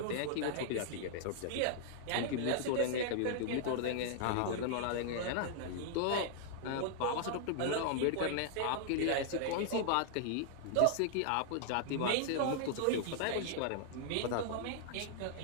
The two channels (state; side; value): different; both; correlation -0.01